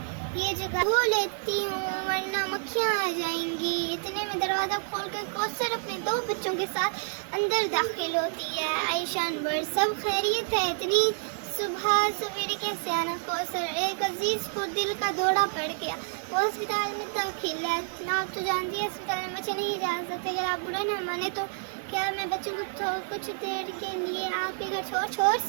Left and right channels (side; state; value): left; silent; digital silence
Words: ये जगह धो लेती हूँ वरना मक्खियाँ आ जाएंगी। इतने में दरवाज़ा खोलकर कौसर अपने 2 बच्चों के साथ अंदर दाखिल होती है। आयशा अनवर, सब खैरियत है? इतनी सुबह सवेरे कैसे आना? कौसर, एक अजीज़ को दिल का दौरा पड़ गया, वो अस्पताल में दाखिल है। आप तो जानती है अस्पताल में बच्चे नहीं जा सकते, अगर आप बुरा ना माने तो क्या मैं बच्चों को कुछ देर के लिए आपके घर छोड़